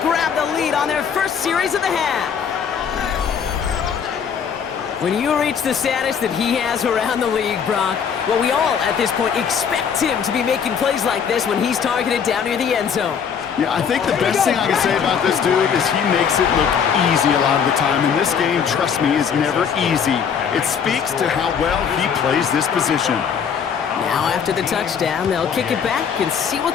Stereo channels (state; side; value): quieter; right; 7.2 dB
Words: the lead on their first series of the half. When you reach the status that he has around the league, Brock, well, we all, at this point, expect him to be making plays like this when he's targeted down near the end zone. Yeah, I think the best thing I can say about this dude is he makes it look easy a lot of the time. And this game, trust me, is never easy. It speaks to how well he plays this position. Now, after the touchdown, they'll kick it back and see what